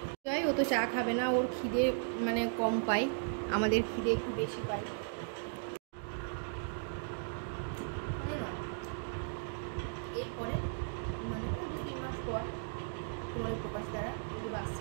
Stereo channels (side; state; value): left; silent; digital silence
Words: সুজয় ও তো চা খাবে না, ওর খিদে মানে কম পাই, আমাদের খিদে একটু বেশি পাই। এরপরে মানে 2-3 মাস পর তোমার প্রকাশ দ্বারা যদি বাস